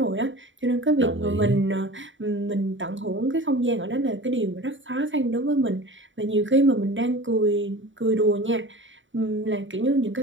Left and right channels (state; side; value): late; left; 0.55 ms